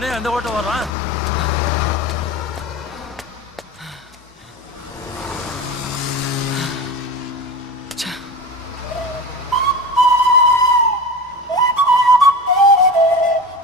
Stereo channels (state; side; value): normal; both; correlation 0.29